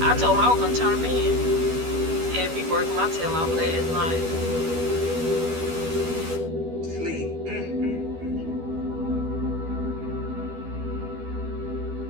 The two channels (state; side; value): late; left; 12 ms